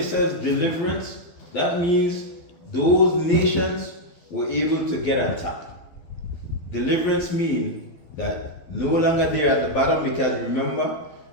says deliverance, that means those nations were able to get on top. Deliverance means that no longer they're at the bottom, because remember,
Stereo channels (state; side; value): late; right; 12 ms